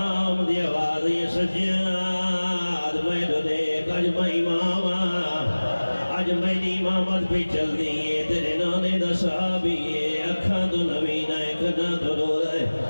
دی آواز یہ سجاد میں دو دیکھ اج میں امام اج میری امامت بھی چل دیئے تیرے نانے دا صحابیے اکھاں تو نبینہ کنا تو رو رہے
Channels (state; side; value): inverted; both; correlation -1.00